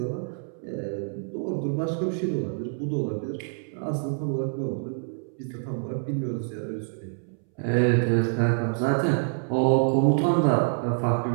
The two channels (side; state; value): left; silent; 61 dB below the other